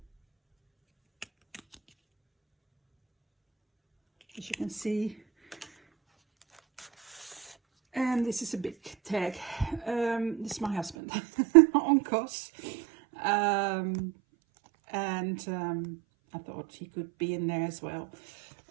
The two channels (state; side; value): drops out; left; at 11.0 s